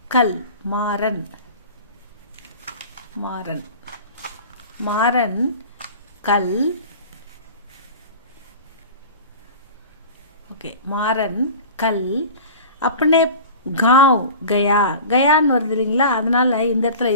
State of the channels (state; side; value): inverted; both; correlation -0.37